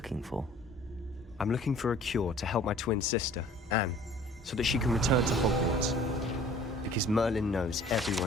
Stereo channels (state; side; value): normal; both; correlation 0.51